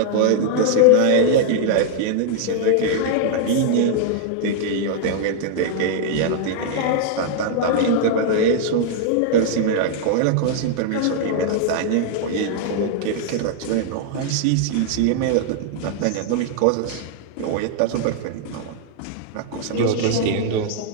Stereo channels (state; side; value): different; both; correlation 0.00